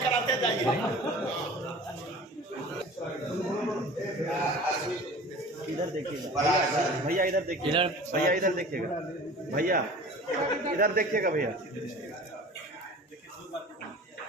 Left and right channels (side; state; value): both; normal; correlation 0.41